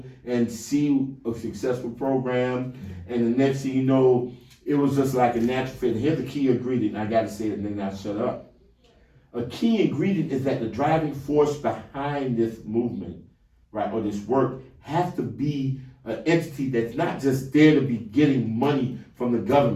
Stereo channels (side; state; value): both; identical; correlation 1.00